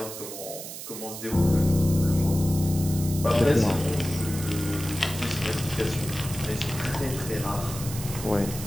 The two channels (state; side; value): noise; right; hiss, 10 dB below the sound